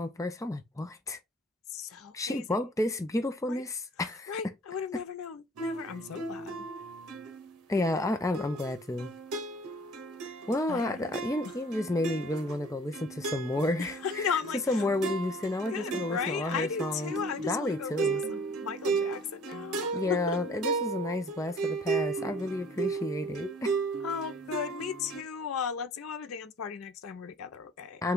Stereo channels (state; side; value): normal; both; correlation 0.53